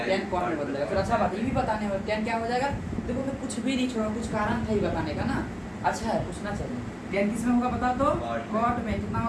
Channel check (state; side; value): identical; both; correlation 1.00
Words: टेन कॉट में बदलेगा, फिर अच्छा बात ये भी बताने में टेन क्या हो जाएगा। देखो मैं कुछ भी नहीं छोड़ा, कुछ कारण था ही बताने का ना, अच्छा है पूछना चाहिए। टेन किस में होगा बता तो, कॉट में। कितना